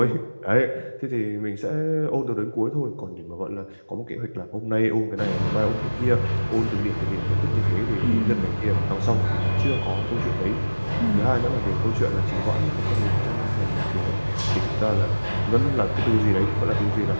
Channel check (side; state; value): both; inverted; correlation -1.00